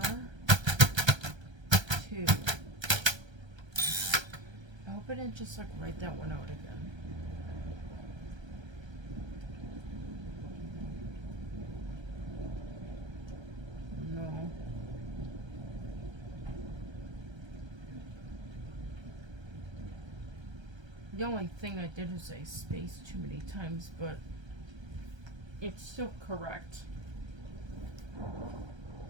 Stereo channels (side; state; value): left; late; 1.3 ms